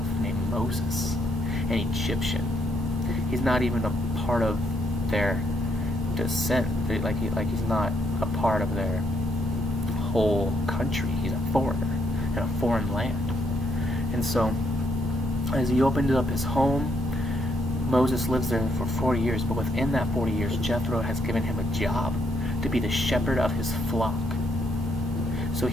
named Moses, an Egyptian. He's not even a part of their descent. He's not a part of their whole country. He's a foreigner in a foreign land. And so, as he opens up his home, Moses lives there for 40 years. But within that 40 years, Jethro has given him a job to be the shepherd of his flock. So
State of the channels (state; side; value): normal; both; correlation 0.74